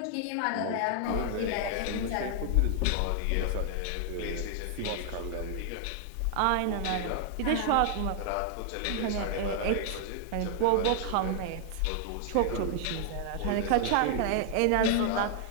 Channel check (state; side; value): different; both; correlation 0.00